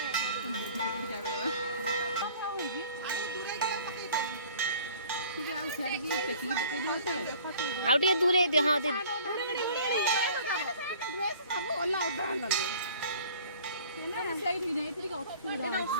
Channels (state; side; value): inverted; both; correlation -0.50